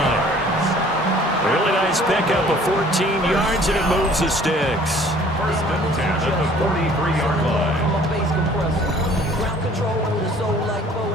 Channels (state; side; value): normal; both; correlation 0.54